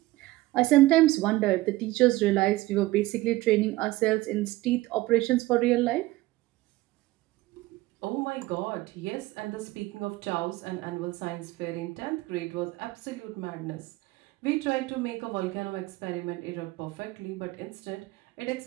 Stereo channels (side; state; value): left; quieter; 18.7 dB